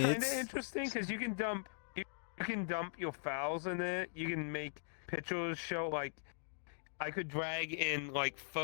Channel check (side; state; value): right; silent; digital silence